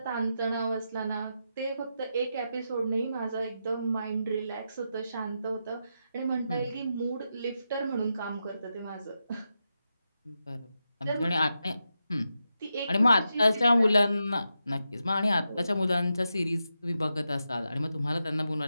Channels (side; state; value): both; inverted; correlation -0.87